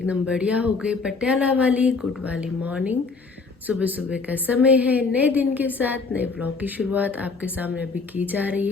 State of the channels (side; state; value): right; quieter; 4.4 dB